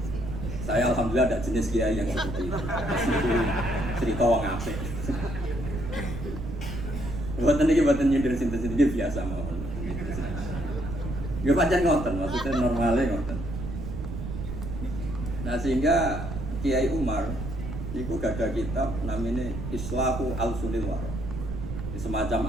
Saya alhamdulillah ada jenis kiai yang seperti itu. Cerita wong apik. Buatan nyindir sinten biasa mawon. Nggih pancen ngoten, maksudnya normalnya ngoten. Nah sehingga Kiai Umar niku gadah kitab namanya Islahu Al-Sulil Waro. Semacam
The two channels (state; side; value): noise; right; rumble, 6 dB below the sound